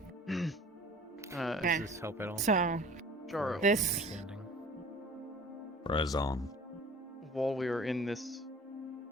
Okay. Does this help at all? So, Jaro. this. Razon. While we are in this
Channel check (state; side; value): normal; both; correlation 0.47